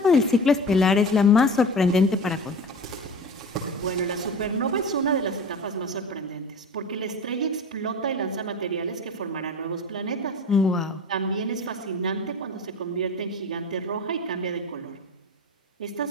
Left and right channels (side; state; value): both; normal; correlation 0.34